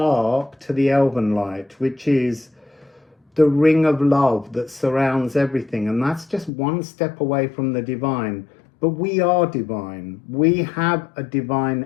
to the elven light, which is the ring of love that surrounds everything. And that's just one step away from the divine. But we are divine. We have a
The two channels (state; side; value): drops out; right; at 6.5 s